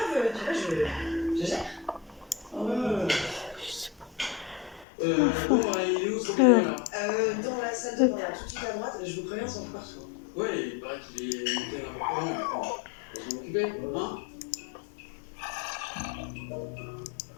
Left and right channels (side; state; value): right; drops out; at 4.9 s